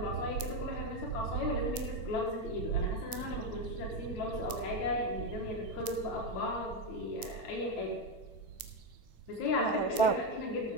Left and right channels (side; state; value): right; late; 8.7 ms